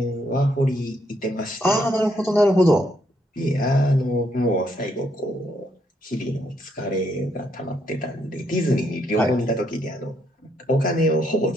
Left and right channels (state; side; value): normal; both; correlation 0.74